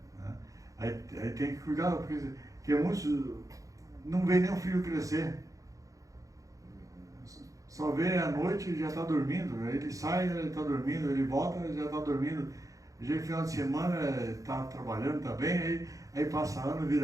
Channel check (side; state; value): left; late; 0.16 ms